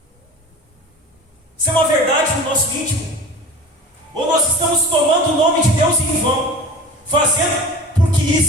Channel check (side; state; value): both; normal; correlation 0.37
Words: isso é uma verdade no nosso íntimo, ou nós estamos tomando o nome de Deus em vão, fazendo, porque